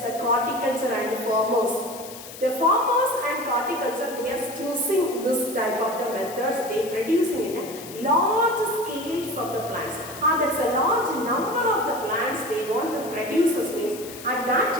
the horticulture and farmers. The farmers and horticulture, they are choosing this type of the methods. They producing in a large scales of the plants. That's a large number of the plants they want to produce. Means at that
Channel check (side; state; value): left; noise; hiss, 14 dB below the sound